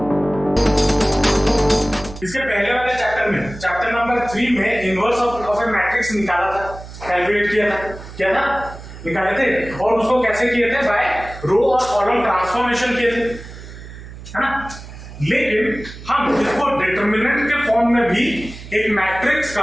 इसके पहले वाले चैप्टर में, चैप्टर नंबर 3 में इनवर्स ऑफ ए मैट्रिक्स निकाला था, कैलकुलेट किया था, क्या था, निकाले थे। और उसको कैसे किए थे, बाय रो और कॉलम ट्रांसफॉर्मेशन किए थे, है ना। लेकिन हम इसको डिटरमिनेंट के फॉर्म में भी एक मैट्रिक्स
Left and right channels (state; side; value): noise; right; hum, 14 dB below the sound